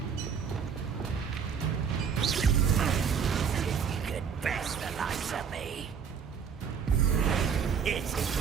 Best the likes of me. It's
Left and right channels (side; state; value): left; quieter; 6.8 dB